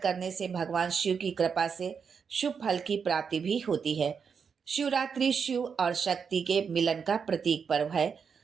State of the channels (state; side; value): quieter; left; 6.3 dB